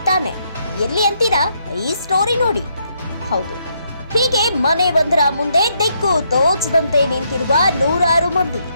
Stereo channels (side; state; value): both; inverted; correlation -0.75